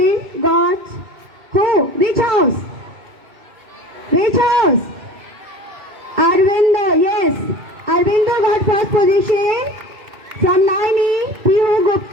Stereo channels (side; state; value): left; late; 2.6 ms